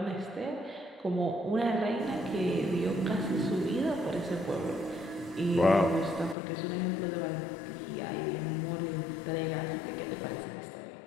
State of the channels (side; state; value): right; drops out; at 6.4 s